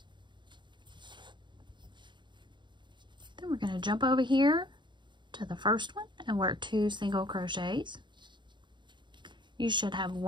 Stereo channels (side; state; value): left; late; 0.22 ms